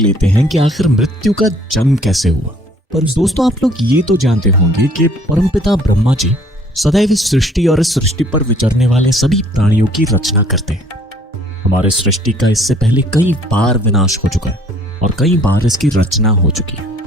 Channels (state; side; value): normal; both; correlation 0.58